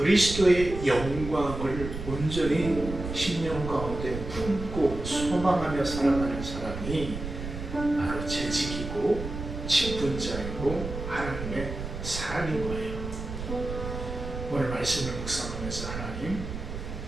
영광을 온전히 심령 가운데 품고 소망하며 살아가는 사람이 바로 재직이고 직분자이고 하나님의 사람인 거예요. 오늘 말씀을 묵상하면서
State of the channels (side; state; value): right; noise; rumble, 7 dB below the sound